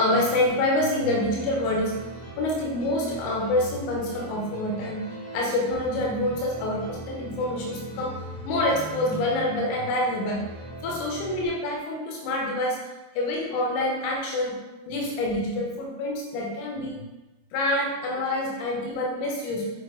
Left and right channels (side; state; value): right; late; 26 ms